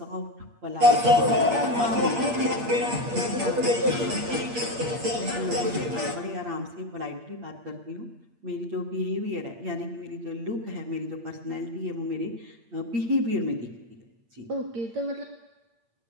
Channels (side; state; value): left; late; 8.6 ms